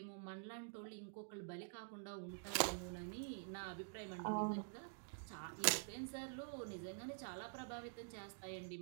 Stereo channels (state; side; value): silent; left; digital silence